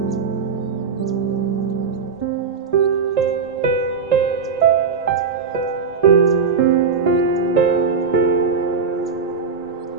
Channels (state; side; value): quieter; left; 5.6 dB